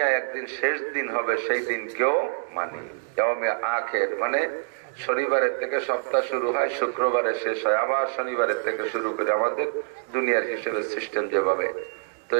একদিন শেষ দিন হবে, সেই দিন কেউ মানি। ইয়াউমে আখির মানে শনিবারের থেকে সপ্তাহ শুরু হয়, শুক্রবারে শেষ হয়, আবার শনিবারের থেকে শুরু করে আমাদের দুনিয়ার হিসেবে সিস্টেম যেভাবে। তো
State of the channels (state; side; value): silent; left; digital silence